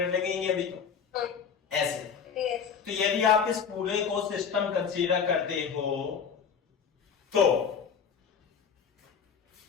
लगेंगे अभी तो, हाँ, ऐसे। yes, तो यदि आप इस पूरे को सिस्टम कंसीडर करते हो तो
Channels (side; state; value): right; quieter; 6.8 dB